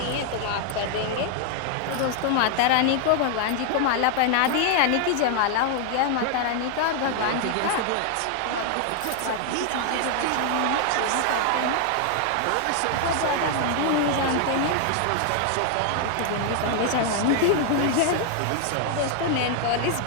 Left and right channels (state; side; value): different; both; correlation 0.00